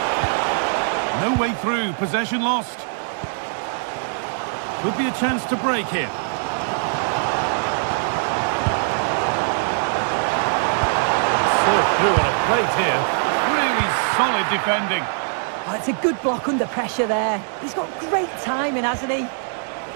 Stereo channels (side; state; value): left; silent; 64 dB below the other